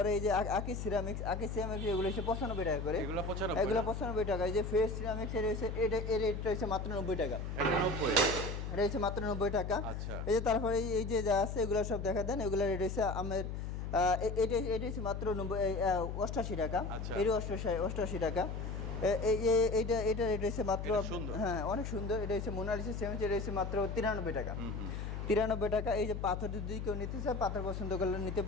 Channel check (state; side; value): noise; left; hum, 5 dB below the sound